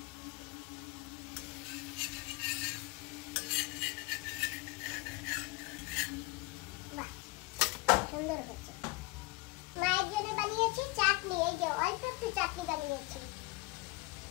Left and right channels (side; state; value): right; quieter; 22.8 dB